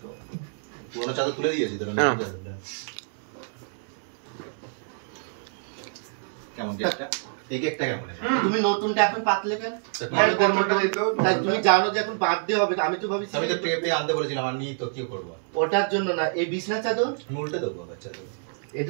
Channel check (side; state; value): left; silent; 59 dB below the other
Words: পুরোনো চাদর তুলে দিয়েছি তোর। কেমন কেকটা? এই কেকটা কেমন? তুমি নতুনটা এখন পাতলে কেন? তুমি তুমি জানো যে এখন বার্থডে হবে, আমি তো ভাবি আমি তো টেপে আনতে বলেছিলাম, আর নিই তো কি করবো? ওটার জন্য না, এই বিছনা চাদর আমি উল্টে দেবো বাচ্চা তো।